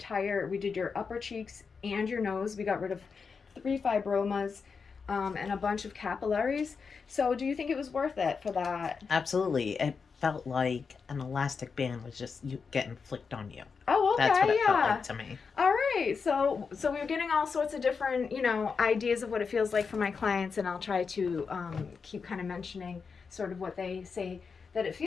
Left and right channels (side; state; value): right; quieter; 5.4 dB